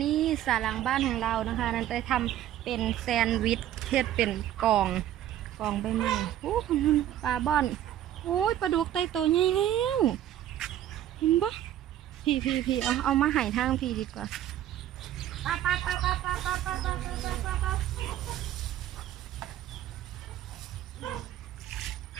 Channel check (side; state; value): left; quieter; 12.1 dB